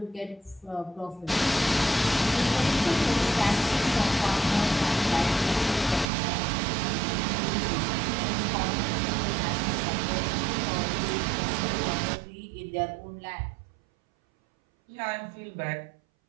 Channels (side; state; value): left; drops out; at 6.1 s